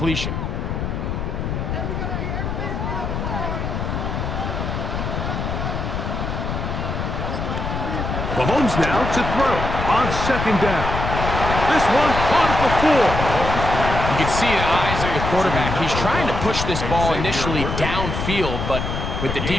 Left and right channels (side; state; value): left; noise; rumble, 3 dB below the sound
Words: Mahomes now to throw on second down. This one caught at the 4. You can see the eyes of the quarterback. He's trying to push this ball initially downfield, but with the